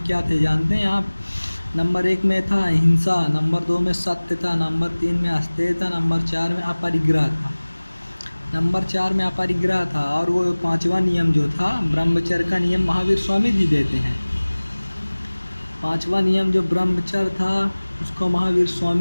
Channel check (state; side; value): inverted; both; correlation -1.00